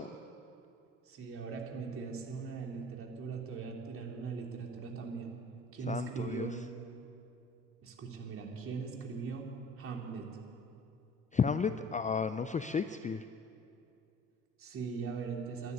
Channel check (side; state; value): both; normal; correlation 0.48